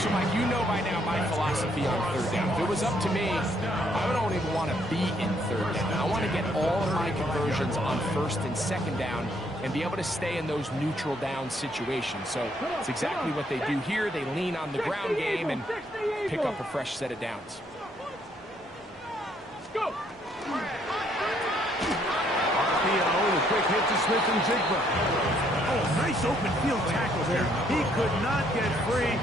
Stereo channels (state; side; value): normal; both; correlation 0.69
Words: So, Mike, you know by now my philosophy on third down. If it was up to me, I don't even want to be in third down. I want to get all of my conversions on first and second down and be able to stay in those neutral down situations. So it's exactly what they do here. They lean on the ground game and pick up a fresh set of downs. Let's go. RPO, the quick hit to Smith and Jigba. Oh, nice open field tackle there. He could not get free.